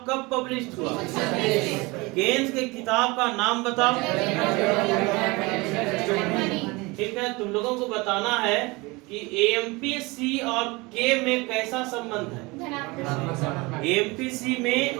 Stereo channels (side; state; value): left; quieter; 24.4 dB